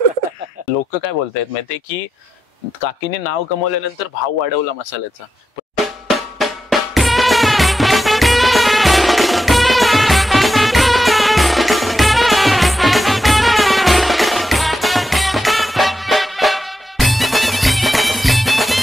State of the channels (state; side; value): normal; both; correlation 0.88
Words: लोक काय बोलतायत माहितीये की काकीने नाव कमवल्यानंतर भाव वाढवला मसाल्याचा.